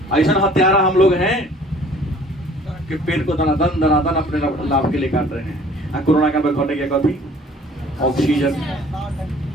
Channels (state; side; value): normal; both; correlation 0.52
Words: ऐसा हत्यारा हम लोग हैं कि पेड़ को दनादन अपने लाभ के लिए काट रहे हैं। कोरोना काल में घटे क्या कभी ऑक्सीजन